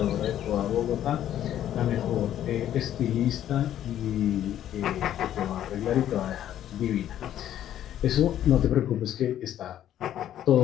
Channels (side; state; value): right; quieter; 11.4 dB